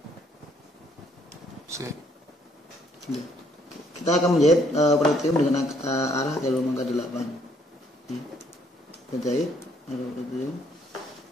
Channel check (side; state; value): both; normal; correlation 0.67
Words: Kita akan menjahit pretium dengan arah jarum angka 8. Kita jahit arah pretium